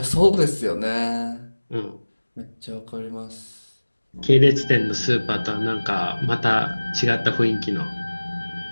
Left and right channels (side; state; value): both; inverted; correlation -1.00